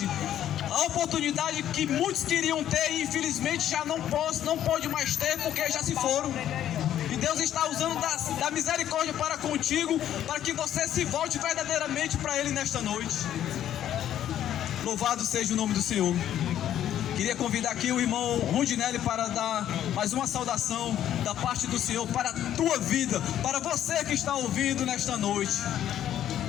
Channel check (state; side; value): quieter; right; 11.1 dB